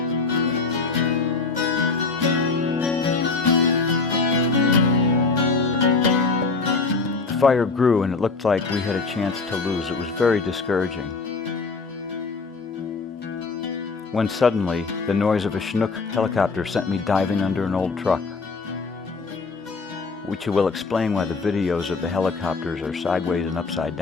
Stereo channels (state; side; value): quieter; right; 4.2 dB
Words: The fire grew and it looked like we had a chance to lose. It was very discouraging. When suddenly, the noise of a Chinook helicopter sent me diving under an old truck, which will explain why the videos of the helicopters are sideways and upside